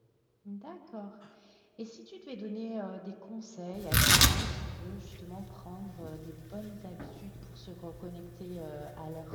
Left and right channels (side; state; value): both; identical; correlation 1.00